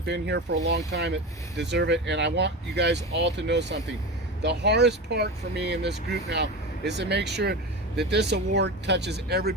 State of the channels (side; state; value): both; normal; correlation 0.25